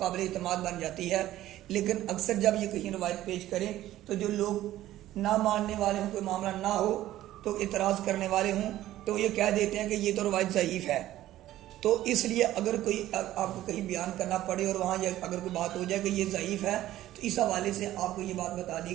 اعتماد بن جاتی ہے۔ لیکن اکثر جب یہ کہیں روایت پیش کریں تو جو لوگ نہ ماننے والے ہوں، کوئی معاملہ نہ ہو تو اعتراض کرنے والے ہوں، تو یہ کہہ دیتے ہیں کہ یہ تو روایت ضعیف ہے۔ تو اس لیے اگر کوئی آپ کو کہیں بیان کرنا پڑے اور وہاں اگر کوئی بات ہو جائے کہ یہ ضعیف ہے، تو اس حوالے سے آپ کو یہ بات بتا دی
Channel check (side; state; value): left; quieter; 14.2 dB